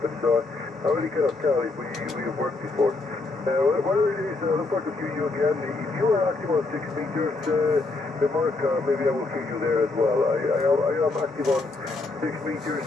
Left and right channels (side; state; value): right; quieter; 3.4 dB